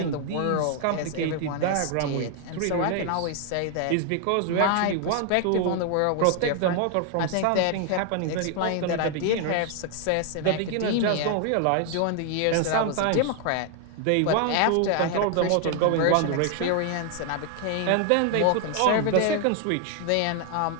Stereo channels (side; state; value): both; different; correlation 0.00